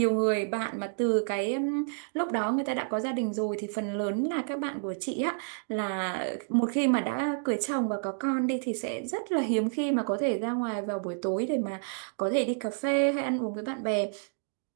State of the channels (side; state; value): left; silent; digital silence